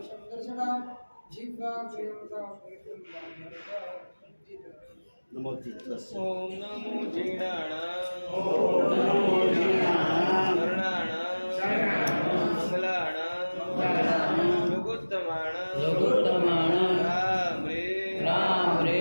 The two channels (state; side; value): inverted; both; correlation -1.00